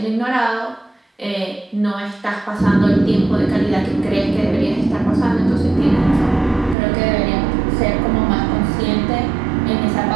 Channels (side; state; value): left; drops out; at 6.8 s